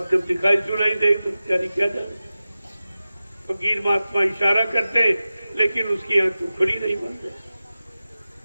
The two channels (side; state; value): both; inverted; correlation -0.95